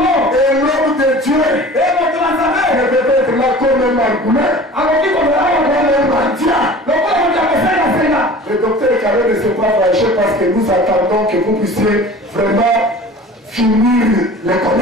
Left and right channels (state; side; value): normal; both; correlation 0.41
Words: Et l'homme de Dieu ne peut être là comme un margoulin, comme un mendiant. Le docteur Carré ne s'est pas fâché parce que nous attendons que vous puissiez vraiment finir les